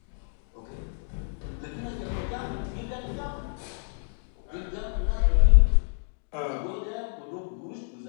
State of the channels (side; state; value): right; silent; 59 dB below the other